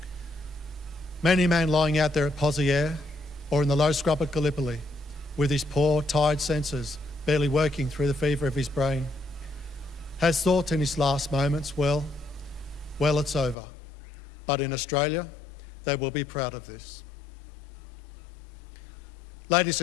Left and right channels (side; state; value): right; drops out; at 13.6 s